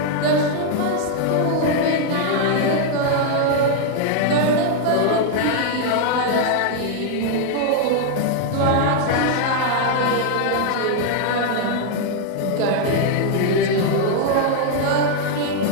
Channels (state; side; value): different; both; correlation 0.00